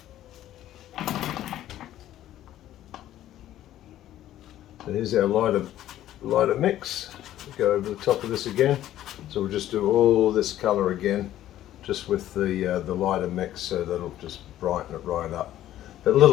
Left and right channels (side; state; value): right; quieter; 12.9 dB